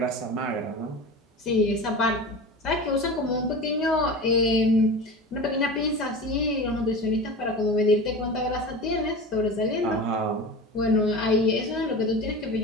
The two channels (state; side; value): normal; both; correlation 0.31